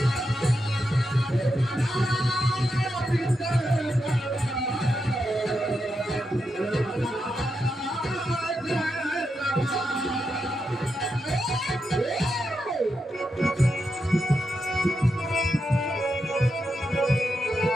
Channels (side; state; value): both; normal; correlation 0.85